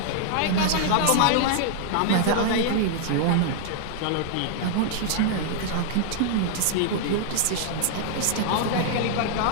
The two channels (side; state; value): both; different; correlation -0.01